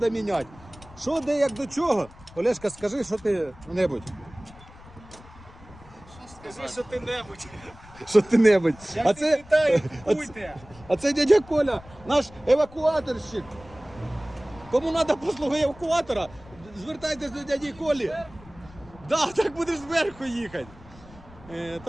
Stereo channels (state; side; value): noise; left; rumble, 21 dB below the sound